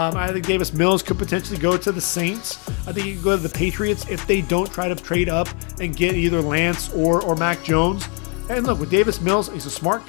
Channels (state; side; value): quieter; right; 36.8 dB